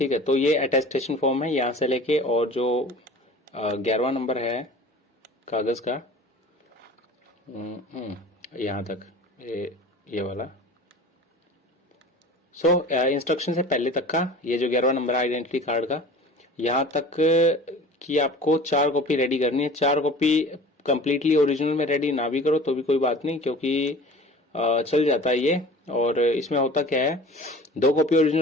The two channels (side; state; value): both; normal; correlation 0.42